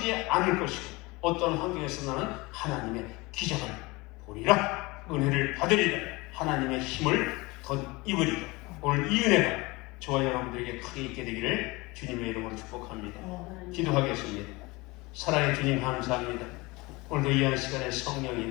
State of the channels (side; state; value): right; quieter; 23.7 dB